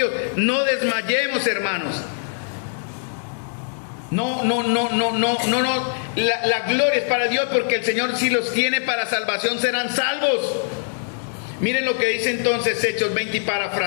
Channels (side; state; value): right; silent; digital silence